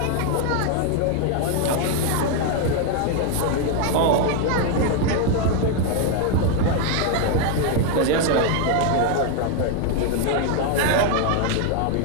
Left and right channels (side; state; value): both; different; correlation 0.01